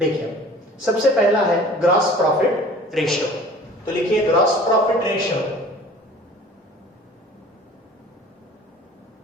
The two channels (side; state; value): both; normal; correlation 0.46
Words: सबसे पहला है ग्रॉस प्रॉफिट रेशियो, तो लिखिए gross profit ratio.